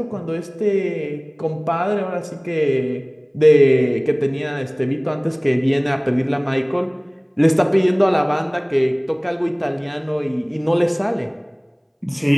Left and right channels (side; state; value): both; identical; correlation 1.00